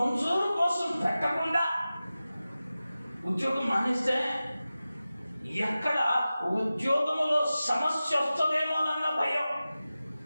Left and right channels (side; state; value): both; inverted; correlation -0.95